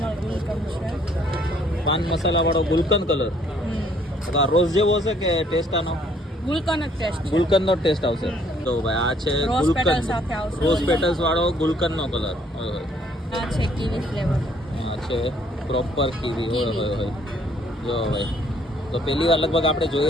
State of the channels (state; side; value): normal; both; correlation 0.63